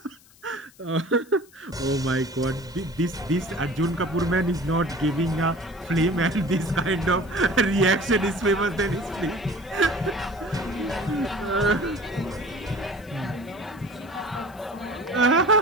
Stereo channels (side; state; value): left; noise; hiss, 26 dB below the sound